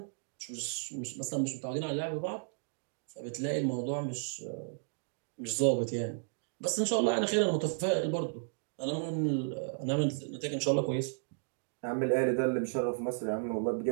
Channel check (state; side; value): silent; left; digital silence